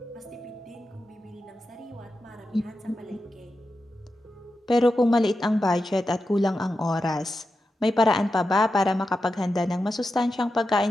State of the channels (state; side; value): normal; both; correlation 0.90